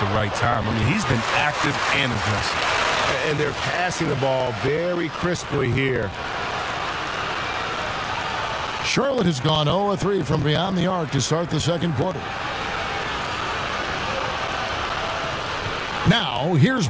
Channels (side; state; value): both; identical; correlation 1.00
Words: right time. I mean, he's been active and aggressive. And they're passing the ball very crisply here. Charlotte has gone 0-3 from beyond the arc to start the second quarter. Now, here's